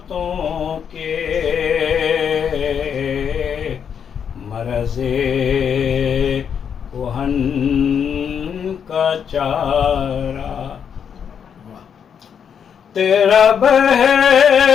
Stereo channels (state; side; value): quieter; right; 7.6 dB